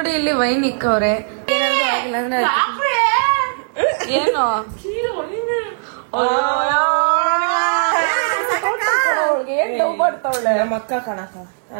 ಇಲ್ಲಿ ವೈನ್ ಇಕ್ಕವ್ರೆ. ಏನಾದ್ರು ಆಗಿಲ್ಲ ಅಂದ್ರೆ ಏನು ಅವಳಿಗೆ ಏನ್ ಡೌ ಮಾಡ್ತಾವಳೆ. ನಮ್ಮ ಅಕ್ಕ ಕಣಕ,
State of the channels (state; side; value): silent; left; digital silence